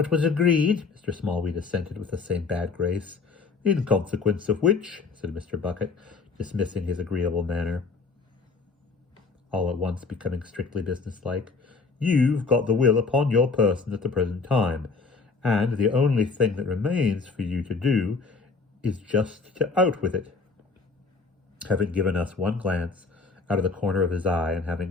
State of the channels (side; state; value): right; quieter; 4.4 dB